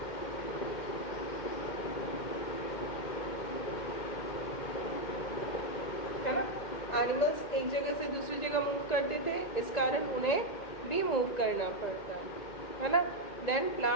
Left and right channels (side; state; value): right; late; 2.1 ms